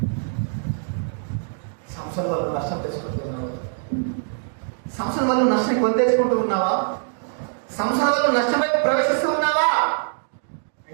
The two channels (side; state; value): left; silent; 63 dB below the other